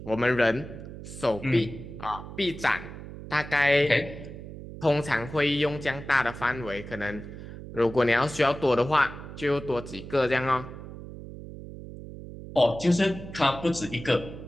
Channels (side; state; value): right; noise; hum, 12 dB below the sound